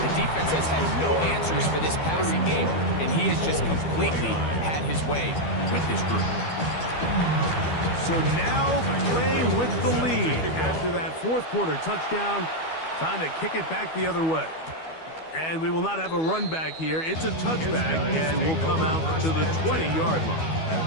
defense has had no answers for this passing game, and he has just completely had his way with this group. So now playing with the lead after that 4th quarter touchdown, Time to kick it back the other way. And we will not have a run back here. It's a touchback, and will come out to the 20-yard line. At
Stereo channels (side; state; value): right; late; 12 ms